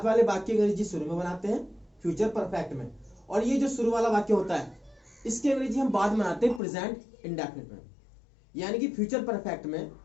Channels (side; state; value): right; drops out; at 6.6 s